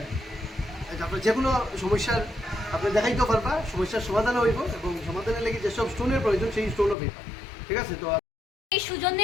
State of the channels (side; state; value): right; drops out; at 7.0 s